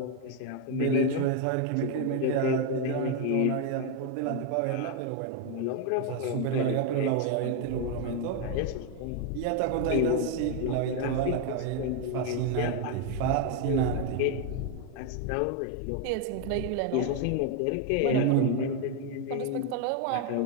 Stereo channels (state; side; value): different; both; correlation 0.01